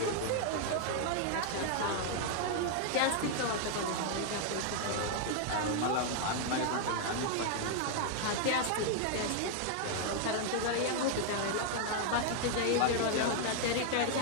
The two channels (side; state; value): both; different; correlation 0.00